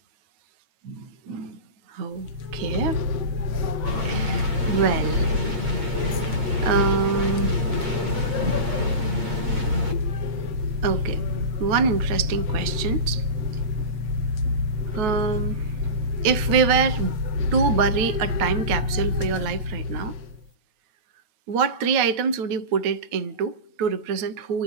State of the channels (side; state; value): left; late; 9.3 ms